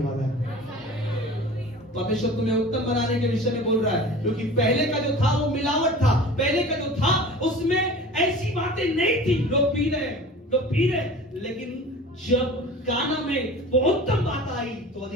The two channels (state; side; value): normal; both; correlation 0.39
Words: वाला है। परमेश्वर तुम्हें उत्तम बनाने के विषय में बोल रहा है, क्योंकि पहले का जो था वो मिलावट था, पहले का जो था उसमें ऐसी बातें नहीं थी। लोग पी रहे, लेकिन जब गाना में वो उत्तम बात आई तो